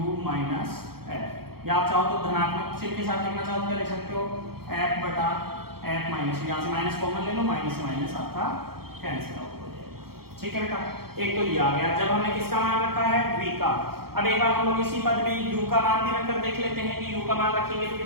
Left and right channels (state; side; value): late; left; 0.95 ms